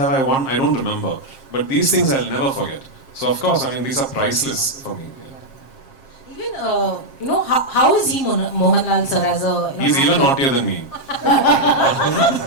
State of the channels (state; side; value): late; right; 7.5 ms